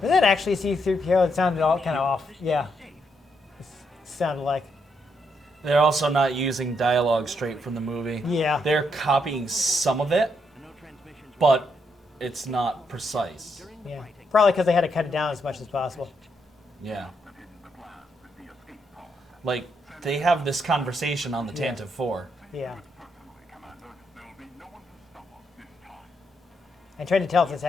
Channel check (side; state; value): both; normal; correlation 0.78